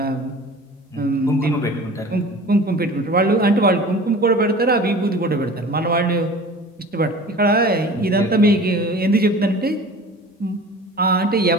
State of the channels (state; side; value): normal; both; correlation 0.41